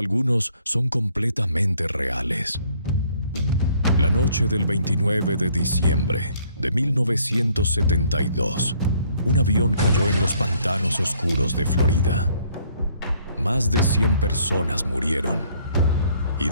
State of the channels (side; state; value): both; inverted; correlation -0.63